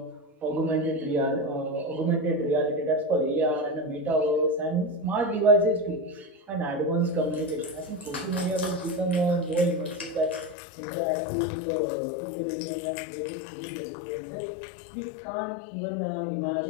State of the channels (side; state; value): right; drops out; at 10.6 s